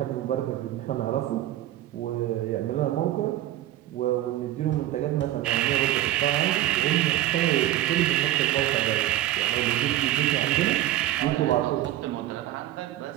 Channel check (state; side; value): quieter; left; 14.0 dB